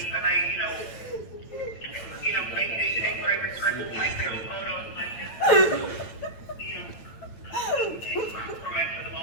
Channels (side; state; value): right; late; 8.9 ms